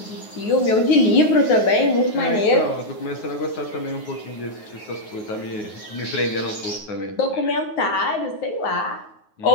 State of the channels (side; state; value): right; late; 9.4 ms